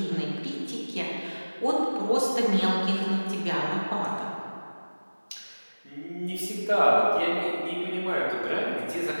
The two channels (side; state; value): both; inverted; correlation -1.00